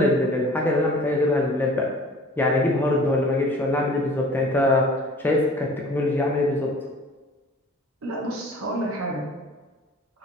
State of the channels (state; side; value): normal; both; correlation 0.47